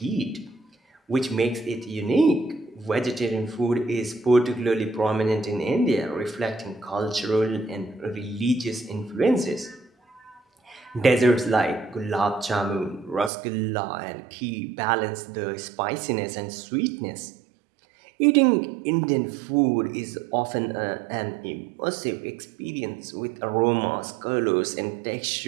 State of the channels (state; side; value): drops out; left; at 13.3 s